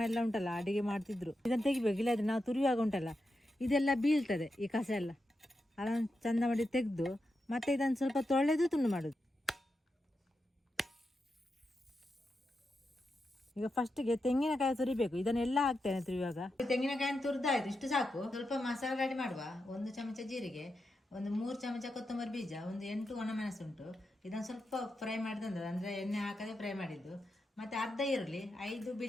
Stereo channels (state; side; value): normal; both; correlation 0.87